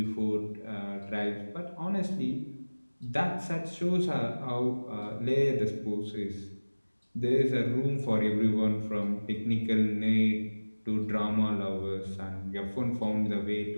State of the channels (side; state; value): both; inverted; correlation -1.00